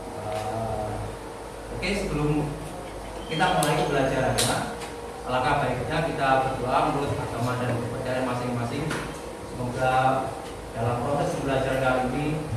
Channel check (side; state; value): both; identical; correlation 1.00